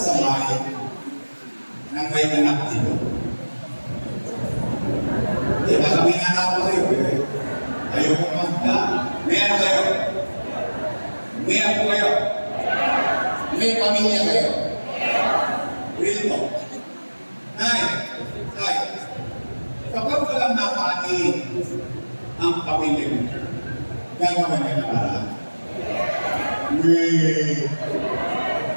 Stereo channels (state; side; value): inverted; both; correlation -1.00